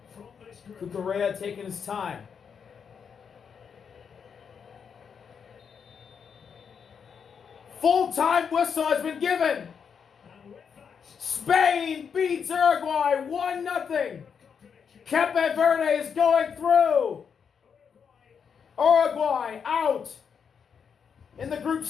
from this group. Cucurella taking his time. Full-time whistle has been given. And with that, Spain beats Uruguay 1-0. Cape Verde is going through. Uruguay out in the group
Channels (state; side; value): quieter; right; 6.8 dB